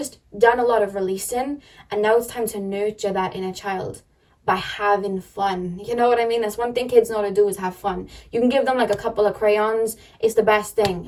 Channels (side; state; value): both; identical; correlation 1.00